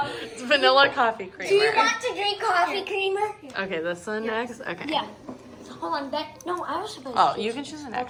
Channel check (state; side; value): identical; both; correlation 1.00